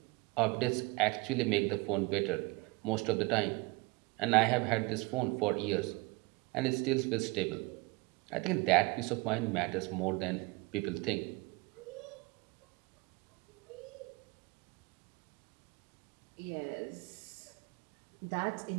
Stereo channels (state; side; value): quieter; left; 25.7 dB